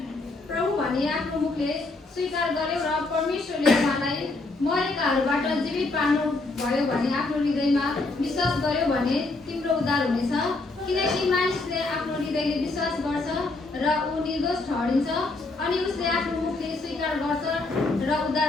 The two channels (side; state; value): right; quieter; 3.3 dB